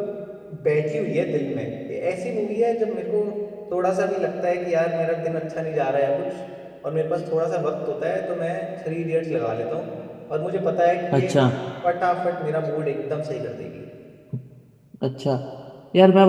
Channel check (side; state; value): both; identical; correlation 1.00